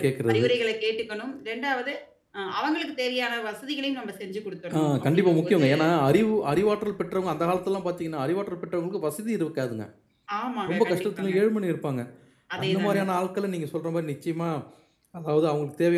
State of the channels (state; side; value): identical; both; correlation 1.00